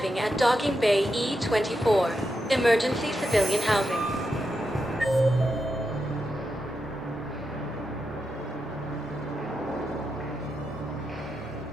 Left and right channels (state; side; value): normal; both; correlation 0.86